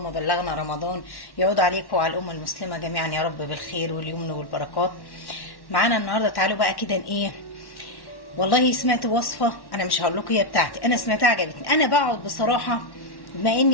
بلغنا رمضان. يعود عليكم وعلى الأمة المسلمة جميعا يا رب بالخير واليمن والبركات. معانا النهاردة تعالوا بقى كده ايه، والله سمعت وصفة، انا مش هقول لكم هي بتاعتي، انا سمعتها عجبتني. انا بقعد بصراحة بما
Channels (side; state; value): right; late; 1.1 ms